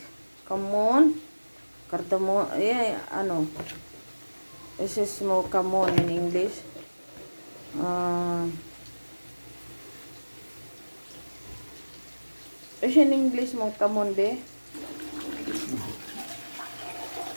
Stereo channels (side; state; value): both; inverted; correlation -1.00